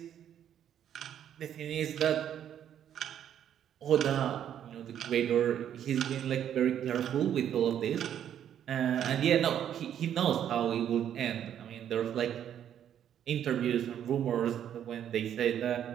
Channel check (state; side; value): quieter; left; 9.9 dB